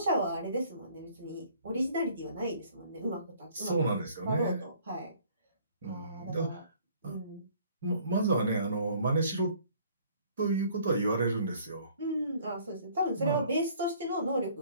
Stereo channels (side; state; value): both; inverted; correlation -0.56